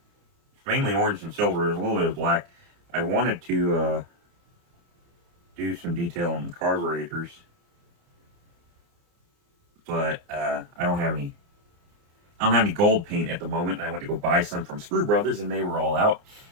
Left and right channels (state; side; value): late; left; 29 ms